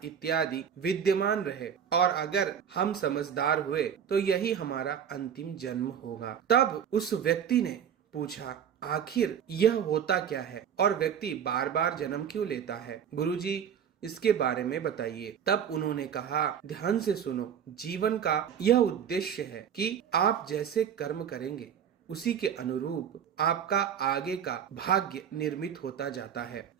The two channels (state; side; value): quieter; left; 8.4 dB